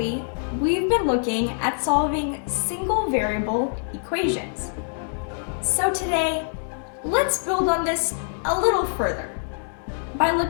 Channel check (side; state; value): right; silent; digital silence